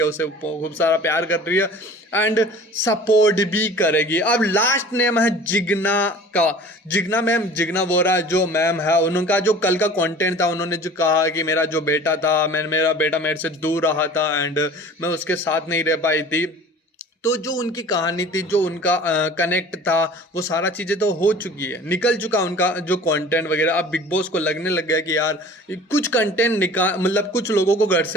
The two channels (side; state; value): both; normal; correlation 0.44